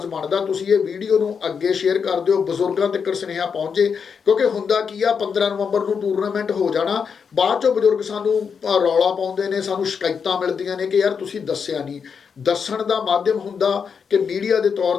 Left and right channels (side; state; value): right; quieter; 6.3 dB